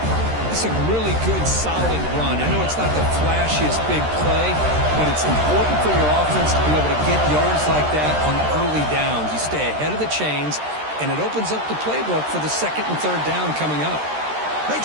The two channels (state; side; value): late; left; 13 ms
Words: It's a really good, solid run. I know it's not the flashiest big play, but it's important for your offense to be able to get yards like that on early downs. You stay ahead of the chains, and it opens up the playbook for the 2nd and 3rd down coming up.